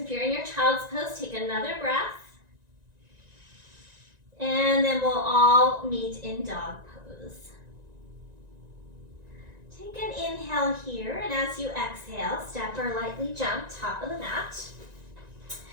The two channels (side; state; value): left; late; 1.9 ms